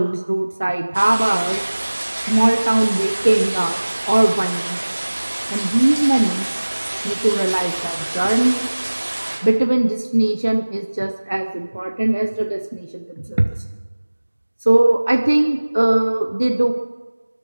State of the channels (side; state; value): both; inverted; correlation -1.00